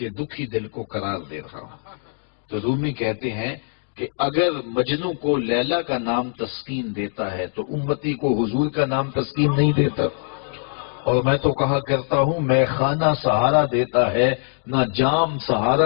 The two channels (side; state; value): right; silent; 62 dB below the other